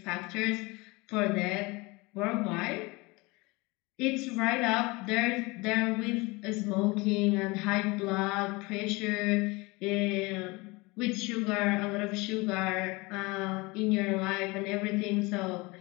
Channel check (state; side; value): quieter; right; 24.7 dB